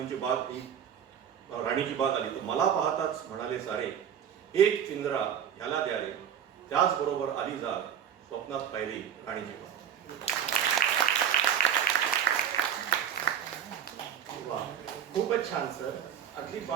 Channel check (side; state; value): left; quieter; 8.9 dB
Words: बाग ही राणीची बाग आली. तर मला पाहताच म्हणाले सारे, एक पिंजरा ह्याला द्या रे, त्याचबरोबर आली जाग स्वप्नात पाहिली राणीची बाग. खूपच छान सर. अगदी